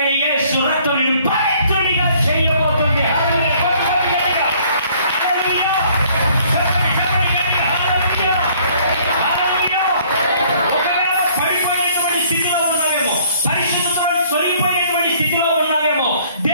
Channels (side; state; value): both; inverted; correlation -0.59